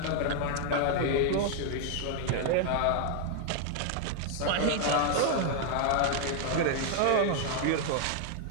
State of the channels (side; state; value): both; different; correlation 0.00